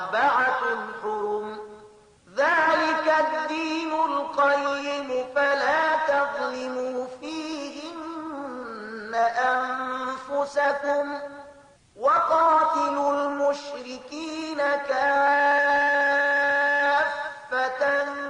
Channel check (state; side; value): identical; both; correlation 1.00